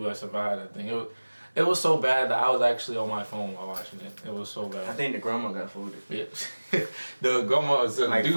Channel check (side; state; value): both; inverted; correlation -1.00